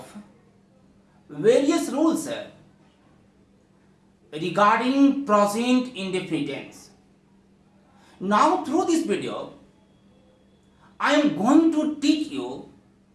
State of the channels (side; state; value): both; identical; correlation 1.00